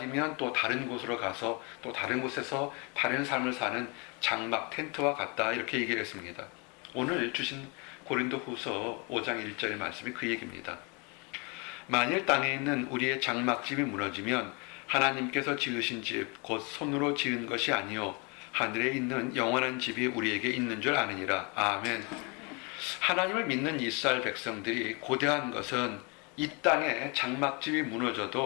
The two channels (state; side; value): quieter; right; 31.5 dB